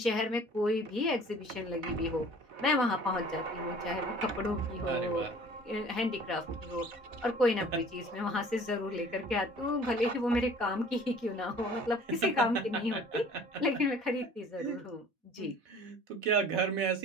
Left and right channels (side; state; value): left; late; 4.1 ms